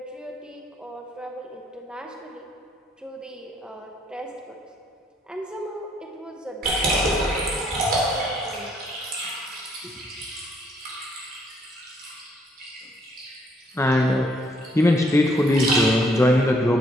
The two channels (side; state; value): both; normal; correlation 0.68